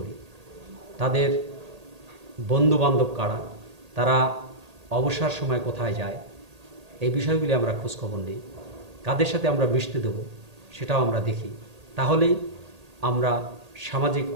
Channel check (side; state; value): left; late; 1.8 ms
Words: তাদের বন্ধুবান্ধব কারা, তারা অবসর সময় কোথায় যায়, এই বিষয়গুলি আমরা খোঁজখবর নিই। কাদের সাথে আমরা মিশতে দেব সেটাও আমরা দেখি। তাহলেই আমরা সামাজিক